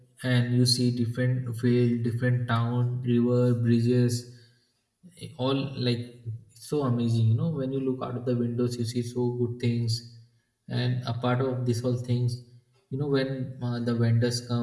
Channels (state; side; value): identical; both; correlation 1.00